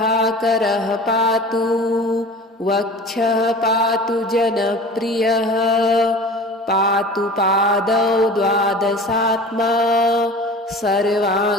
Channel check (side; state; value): both; normal; correlation 0.39